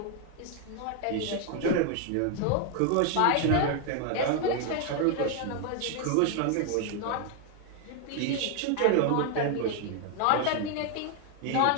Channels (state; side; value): different; both; correlation 0.00